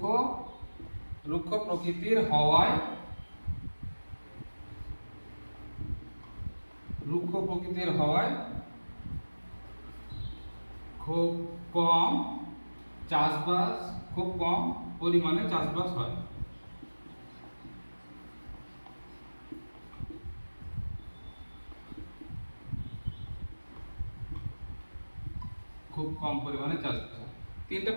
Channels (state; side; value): inverted; both; correlation -1.00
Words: রুক্ষ প্রকৃতির হওয়ায় খুব কম পরিমাণে চাষবাস হয়। খুব কম পরিমাণে চাষবাস হয়। 3টে